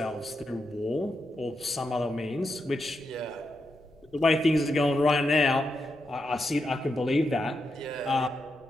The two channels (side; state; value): left; noise; rumble, 29 dB below the sound